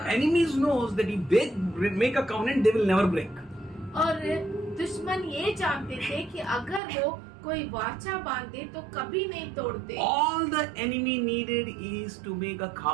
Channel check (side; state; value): left; drops out; at 6.8 s